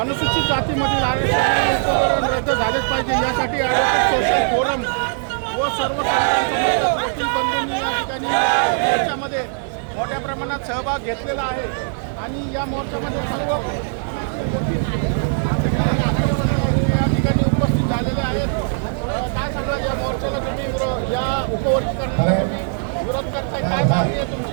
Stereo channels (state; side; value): silent; left; 65 dB below the other